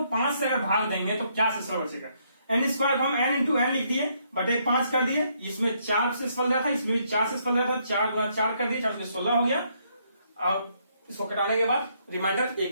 5 से अगर भाग देंगे तो क्या शेषफल बचेगा? n² को हम n इंटू n लिख दिए, बटे 5 कर दिए। इसमें 4 शेषफल रहा था, इसमें भी 4 शेषफल रहा था। 4 गुना 4 कर दिए, 4 से 16 हो गया। अब इसको कटाने के बाद रिमाइंडर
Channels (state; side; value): inverted; both; correlation -0.72